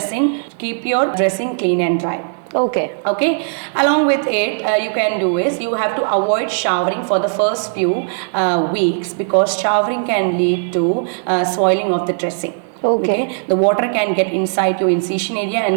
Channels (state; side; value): silent; left; 62 dB below the other